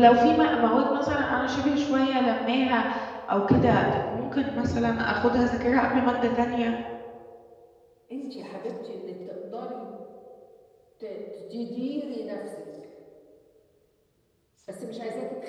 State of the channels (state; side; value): identical; both; correlation 1.00